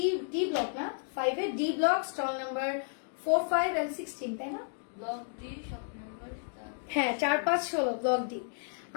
ডি ব্লক না, 5 এ D block, stall number 4, 5 and 16, তাই না? ব্লক ডি শপ নাম্বার হ্যাঁ, 4, 5, 16 ব্লক ডি।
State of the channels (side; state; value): right; silent; digital silence